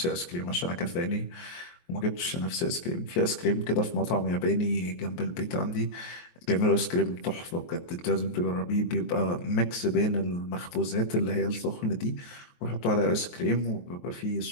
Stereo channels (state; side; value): late; right; 23 ms